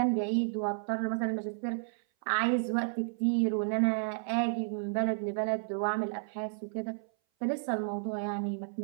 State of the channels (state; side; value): silent; left; 56 dB below the other